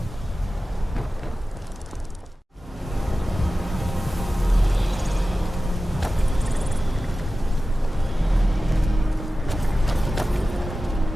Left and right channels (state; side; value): normal; both; correlation 0.95